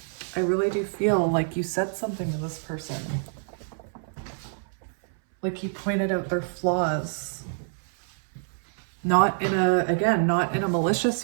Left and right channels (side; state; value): left; silent; 59 dB below the other